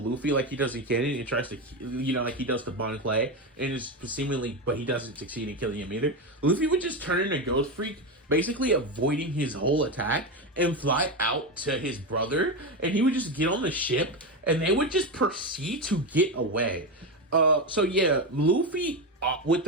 Luffy like he does in Canon and tries to, like he does to Bon Clay, and is seemingly, but he doesn't succeed in killing him either, Luffy would just turn into Ghost Freak, basically avoiding his whole attack, and fly out to his brother, and he would just get on the ship, and they would just proceed to get away. So yeah, Luffy, with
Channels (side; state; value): both; normal; correlation 0.14